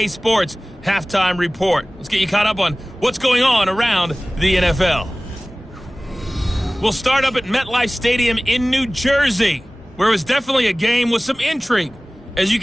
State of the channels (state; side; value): normal; both; correlation 0.98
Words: Sports Halftime Report. Let's get you caught up on what's going on around the NFL. We'll start up at MetLife Stadium in New Jersey, where it was definitely a game with some intrigue, as you